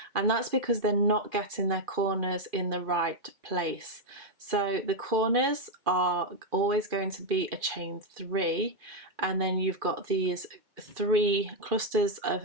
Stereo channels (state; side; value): late; left; 2.5 ms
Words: and that's because they're not getting their corners in the right place. So the corners are always going to be a chain 3, and then you've got these 3 clusters